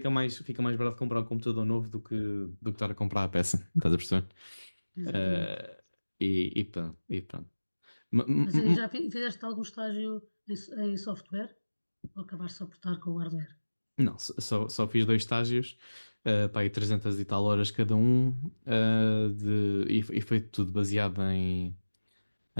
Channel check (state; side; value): inverted; both; correlation -1.00